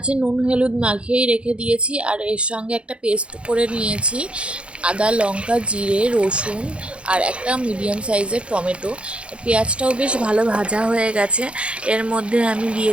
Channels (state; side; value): late; left; 0.059 ms